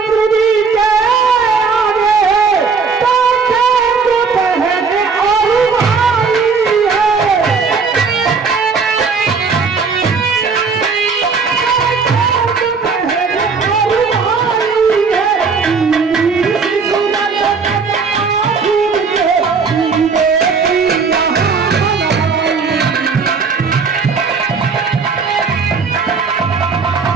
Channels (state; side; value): quieter; left; 5.1 dB